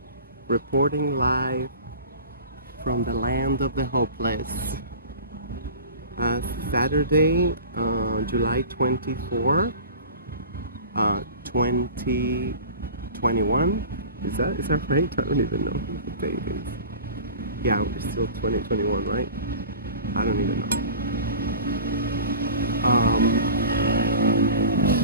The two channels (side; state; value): both; inverted; correlation -0.37